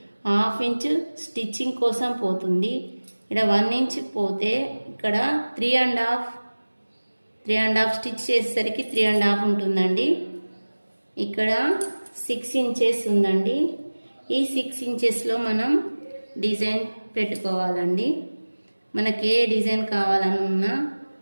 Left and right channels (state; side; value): inverted; both; correlation -1.00